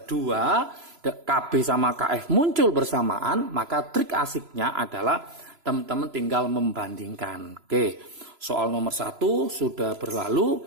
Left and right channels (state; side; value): late; left; 3.0 ms